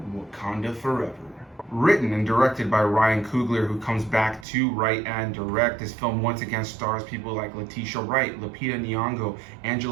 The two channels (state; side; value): drops out; left; at 4.5 s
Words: Wakanda Forever. Written and directed by Ryan Coogler, who comes back to write and direct. This film once again stars people like Letitia Wright, Nyong'o,